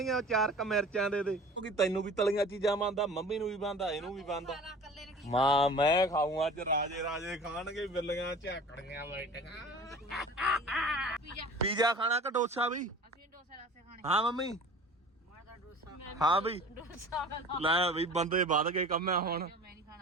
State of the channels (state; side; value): normal; both; correlation 0.42